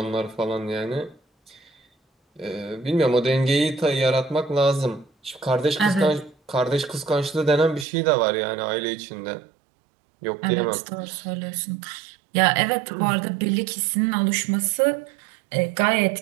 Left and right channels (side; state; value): left; drops out; at 7.9 s